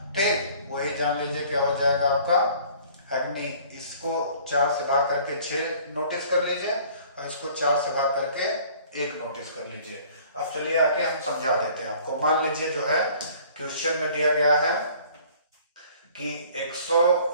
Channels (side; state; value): both; inverted; correlation -0.52